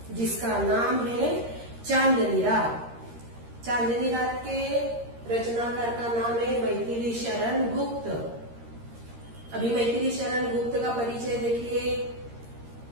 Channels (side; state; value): left; late; 13 ms